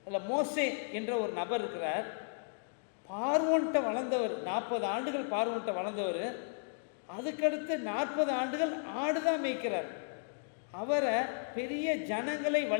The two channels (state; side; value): silent; right; digital silence